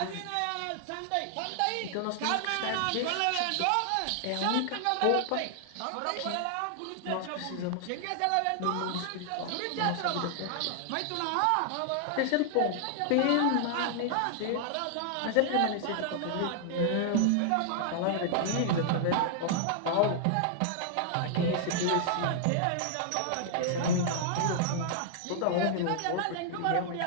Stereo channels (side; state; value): both; different; correlation 0.00